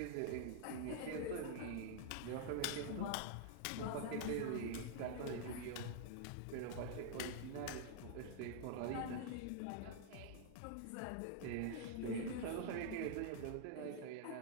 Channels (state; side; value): different; both; correlation -0.01